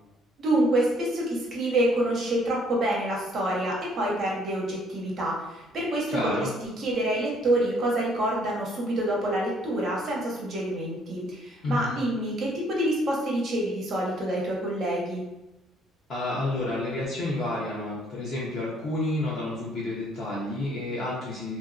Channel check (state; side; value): normal; both; correlation 0.64